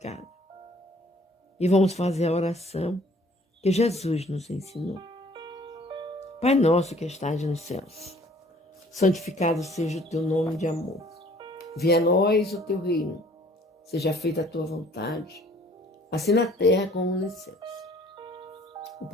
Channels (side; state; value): both; normal; correlation 0.56